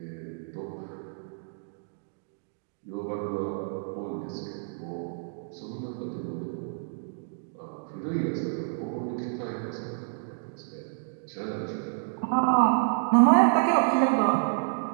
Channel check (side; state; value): left; silent; digital silence